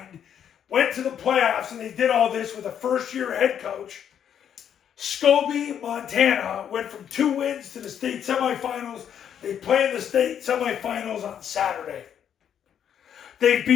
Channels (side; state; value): right; quieter; 9.0 dB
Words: Went to the playoffs, and they did all this with a first-year head coach. Scobie, Montana, went from 2 wins to the state semifinals. They play in the state semifinals on Saturday. They